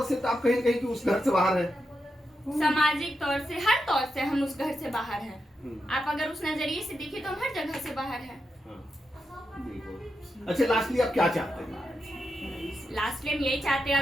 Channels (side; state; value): both; normal; correlation 0.86